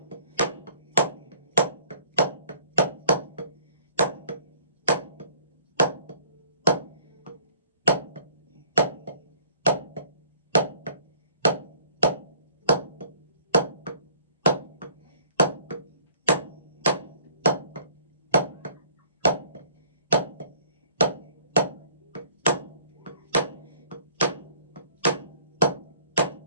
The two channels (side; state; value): both; inverted; correlation -0.58